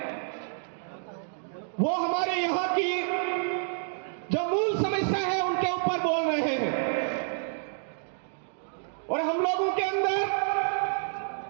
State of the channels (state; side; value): silent; left; digital silence